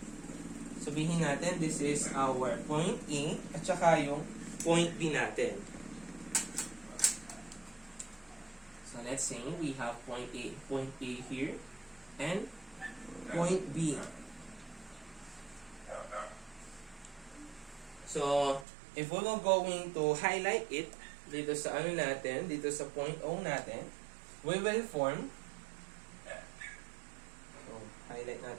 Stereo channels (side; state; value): left; drops out; at 18.7 s